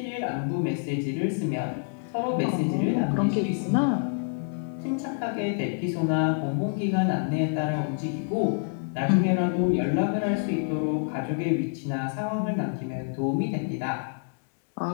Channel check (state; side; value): silent; right; 60 dB below the other